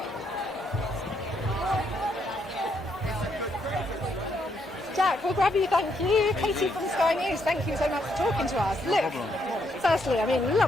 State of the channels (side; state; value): both; normal; correlation 0.75